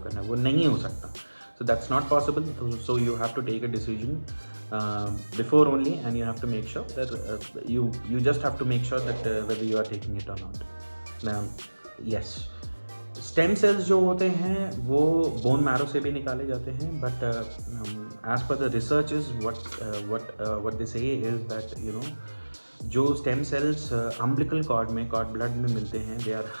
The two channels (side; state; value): both; inverted; correlation -1.00